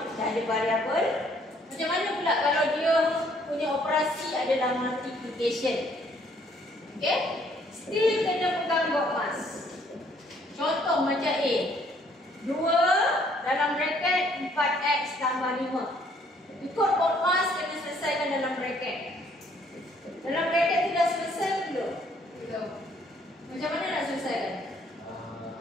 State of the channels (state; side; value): normal; both; correlation 0.64